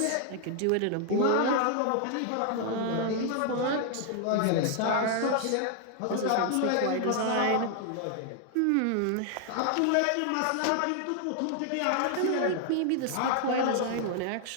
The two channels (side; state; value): both; different; correlation 0.00